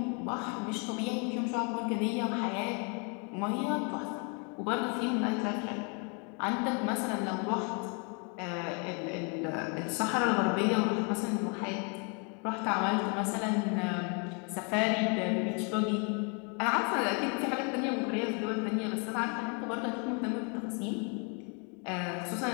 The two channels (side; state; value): right; quieter; 36.0 dB